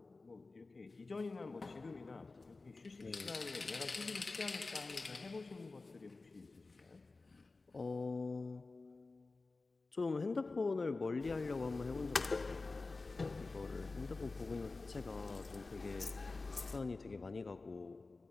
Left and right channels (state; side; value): quieter; right; 3.6 dB